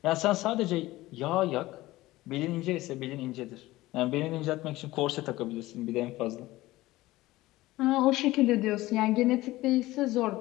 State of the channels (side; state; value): right; quieter; 17.9 dB